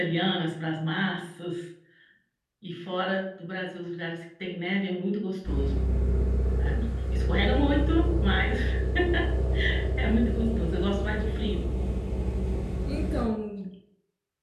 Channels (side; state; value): both; identical; correlation 1.00